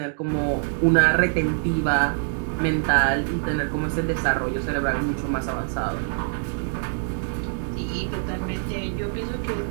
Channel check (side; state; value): left; silent; digital silence